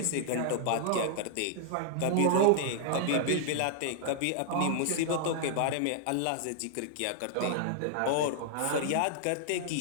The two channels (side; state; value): both; different; correlation -0.01